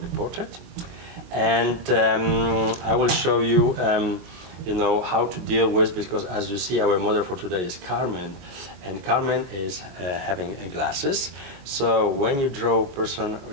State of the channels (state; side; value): late; left; 22 ms